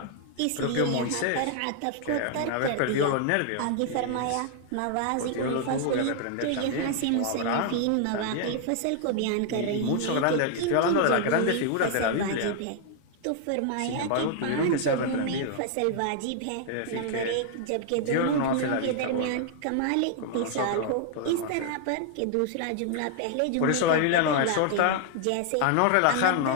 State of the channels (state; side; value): different; both; correlation 0.00